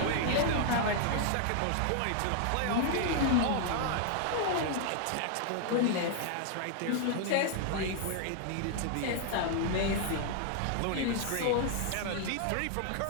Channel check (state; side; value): different; both; correlation 0.00